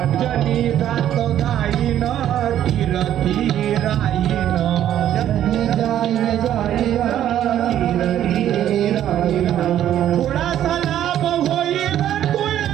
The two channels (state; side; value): quieter; left; 11.3 dB